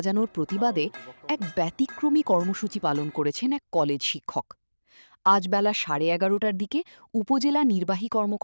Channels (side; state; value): both; inverted; correlation -1.00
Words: প্রতিবাদে এক ব্যতিক্রমী কর্মসূচি পালন করেছেন এক কলেজ শিক্ষক। আজ বেলা 11:30টার দিকে উপজেলা নির্বাহী